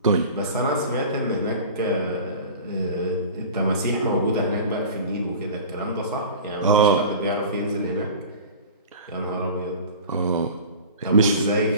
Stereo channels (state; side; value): inverted; both; correlation -0.37